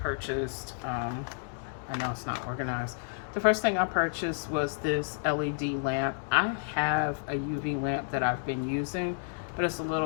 I know it's not organized. The first thing I purchased was this LED lamp. I have a UV lamp that I've been using, but it's a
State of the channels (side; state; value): right; silent; digital silence